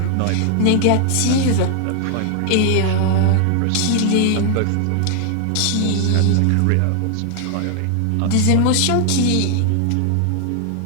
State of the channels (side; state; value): both; different; correlation 0.00